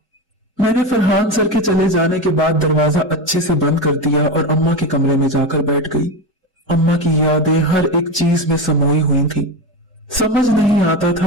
मैंने फरहान सर के चले जाने के बाद दरवाजा अच्छे से बंद कर दिया और अम्मा के कमरे में जाकर बैठ गई। अम्मा की यादें हर एक चीज में समोई हुई थी। समझ नहीं आता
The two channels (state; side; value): normal; both; correlation 0.19